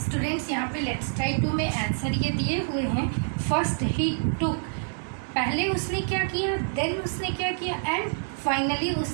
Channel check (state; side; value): silent; left; digital silence